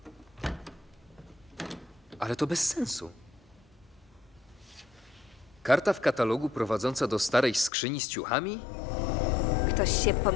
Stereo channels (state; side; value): drops out; right; at 7.7 s